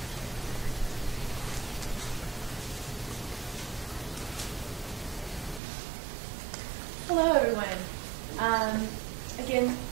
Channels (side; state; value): left; drops out; at 5.6 s